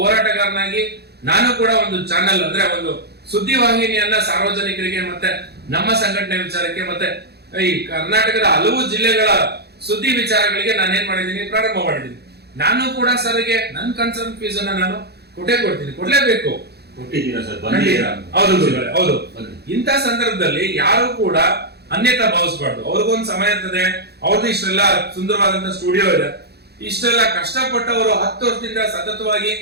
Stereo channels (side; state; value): left; late; 0.48 ms